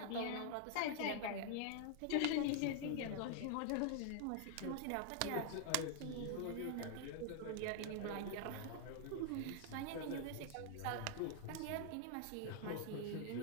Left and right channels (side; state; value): both; different; correlation 0.00